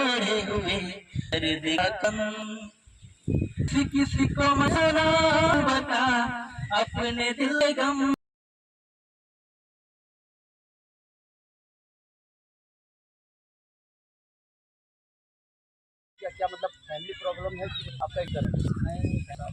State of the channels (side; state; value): both; identical; correlation 1.00